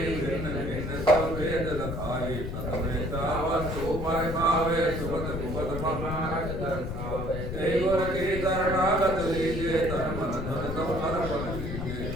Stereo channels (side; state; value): left; noise; rumble, 5 dB below the sound